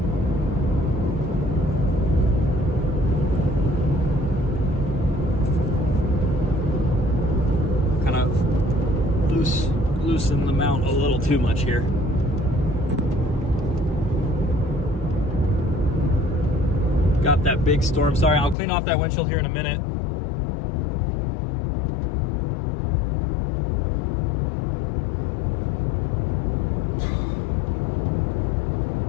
Loosen the mount a little too much here. Got that big storm. Sorry, I'll clean off that windshield here in a minute.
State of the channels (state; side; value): drops out; right; at 18.6 s